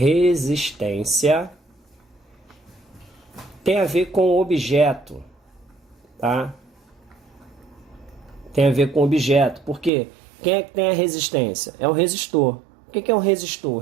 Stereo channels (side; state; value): left; drops out; at 9.9 s